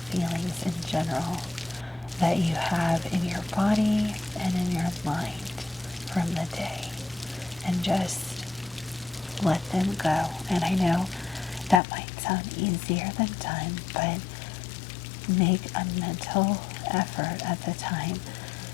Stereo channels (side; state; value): right; drops out; at 11.8 s